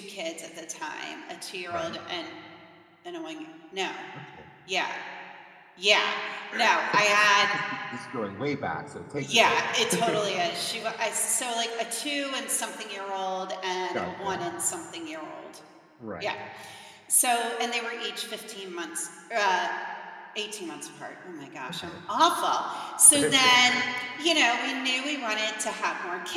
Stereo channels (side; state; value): both; identical; correlation 1.00